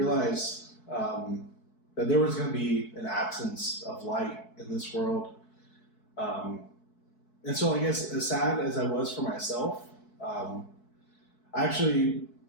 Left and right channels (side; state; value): right; late; 4.6 ms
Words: that there was going to be an absence of light in this world. And so I guess as sad as I was for myself, I